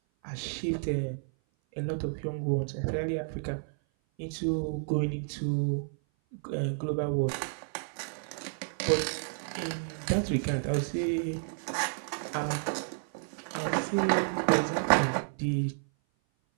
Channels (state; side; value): silent; left; 56 dB below the other